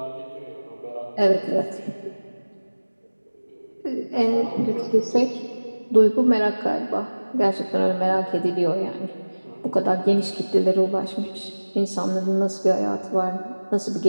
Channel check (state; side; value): inverted; both; correlation -1.00